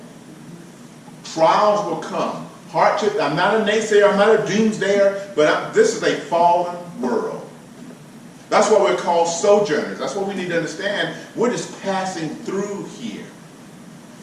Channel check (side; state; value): both; identical; correlation 1.00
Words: Trials will come. Hardship. I'm not a naysayer. I'm not a doomsdayer. But this is a fallen world. That's why we're called sojourners. That's what we need to understand. We're just passing through here.